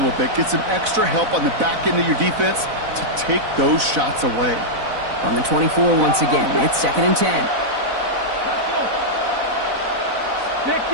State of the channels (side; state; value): left; late; 4.0 ms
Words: little bit, get some extra help on the back end of your defense to take those shots away. On the 24 once again, it's 2nd and 10.